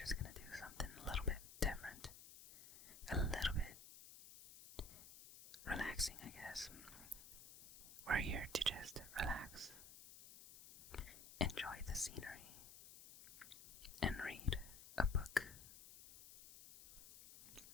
gonna do something a little bit different. A little bit relaxing, I guess. We're here to just relax, enjoy the scenery, and read a book.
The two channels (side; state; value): left; noise; hiss, 15 dB below the sound